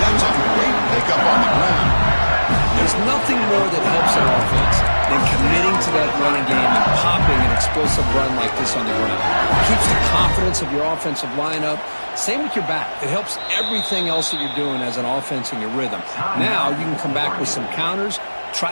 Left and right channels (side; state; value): both; inverted; correlation -1.00